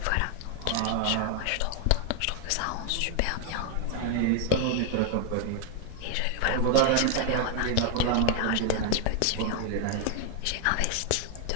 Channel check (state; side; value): different; both; correlation 0.00